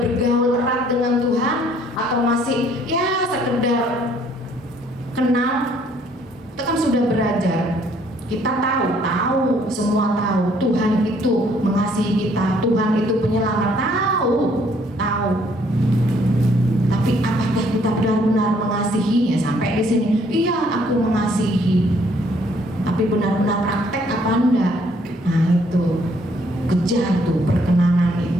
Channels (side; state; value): both; normal; correlation 0.64